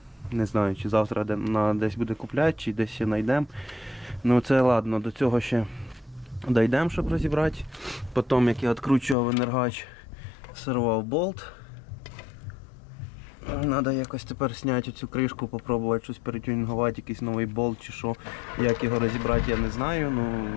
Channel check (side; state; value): right; drops out; at 9.2 s